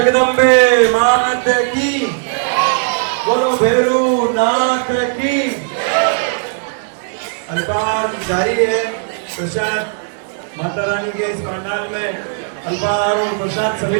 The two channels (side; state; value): left; silent; digital silence